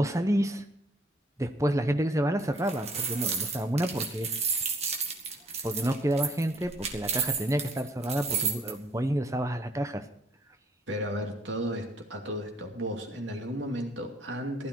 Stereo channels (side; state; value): both; normal; correlation 0.63